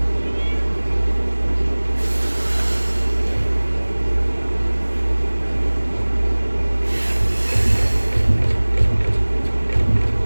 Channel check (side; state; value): both; inverted; correlation -1.00